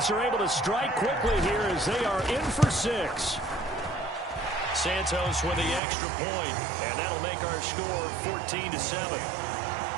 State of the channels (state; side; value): drops out; left; at 5.8 s